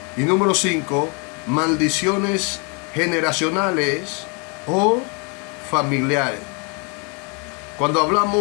Y número 5, maldiciones generacionales o familiares. Cuando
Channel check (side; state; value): right; quieter; 34.9 dB